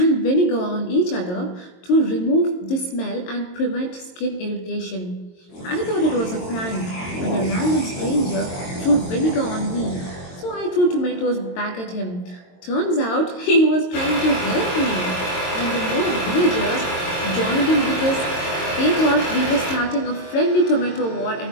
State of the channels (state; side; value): late; right; 22 ms